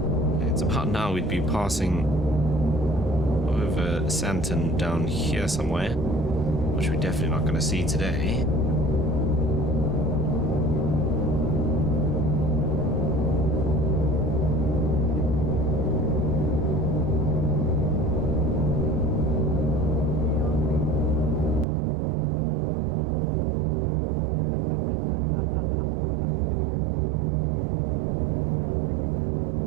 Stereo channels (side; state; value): left; drops out; at 21.7 s